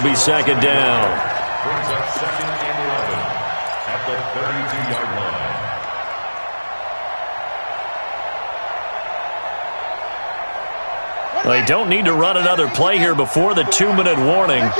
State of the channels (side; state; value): both; inverted; correlation -1.00